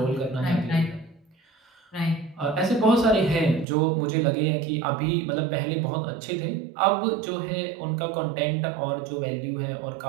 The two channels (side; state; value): left; drops out; at 3.7 s